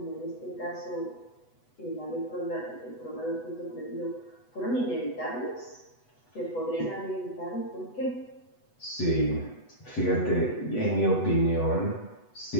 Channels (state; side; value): late; right; 8.1 ms